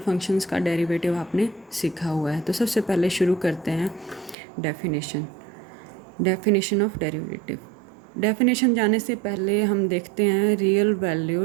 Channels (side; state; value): left; drops out; at 4.4 s